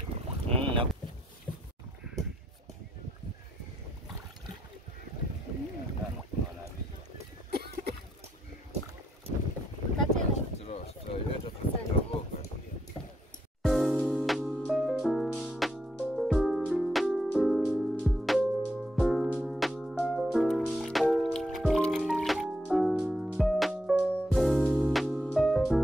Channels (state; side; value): normal; both; correlation 0.78